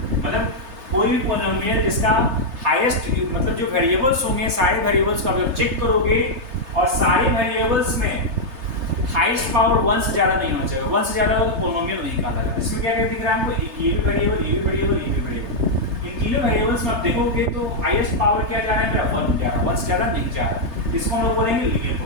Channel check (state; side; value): late; left; 3.3 ms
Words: मतलब कोई भी पॉलिनोमियल जिसका हाईएस्ट मतलब जो वेरिएबल्स होंगे सारे वेरिएबल्स को आप जब चेक करोगे और सारे वेरिएबल्स में हाईएस्ट पावर 1 से ज्यादा नहीं होना चाहिए। 1 से ज्यादा हो तो पॉलिनोमियल नहीं कहलाएगा। इसमें क्या क्या दिख रहा है हमको? ये भी वेरिएबल, ये भी वेरिएबल, ये भी वेरिएबल। इन तीनों वेरिएबल्स में आप देखोगे तो हाईएस्ट पावर क्या जा रहा है? मेरा 1 जा रहा है, 1 से ज्यादा नहीं जा रहा है। इसको हम लोग बोलेंगे लीनियर